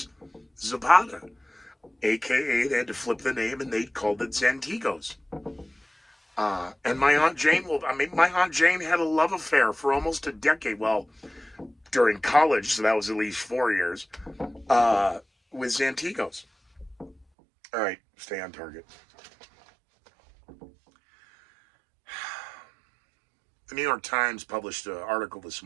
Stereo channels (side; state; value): left; drops out; at 17.2 s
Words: Zapata, a.k.a. they had to flip the name and they called it Zantigos. And my Aunt Jane had a love affair for almost a decade. Well, during college, so that was at least 4 years, with Zantigos. All right, stay on target. The New York Times published an article this